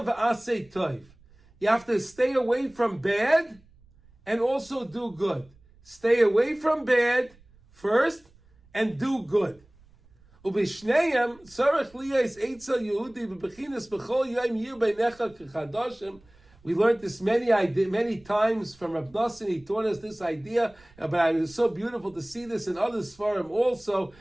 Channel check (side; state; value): right; noise; rumble, 28 dB below the sound